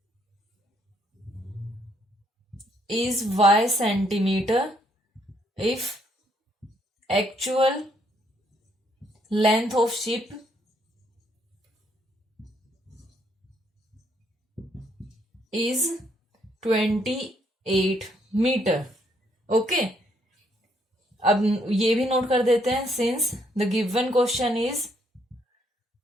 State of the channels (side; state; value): both; normal; correlation 0.71